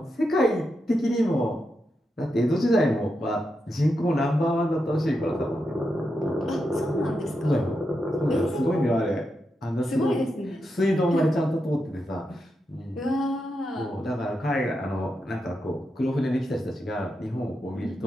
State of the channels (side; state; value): both; normal; correlation 0.86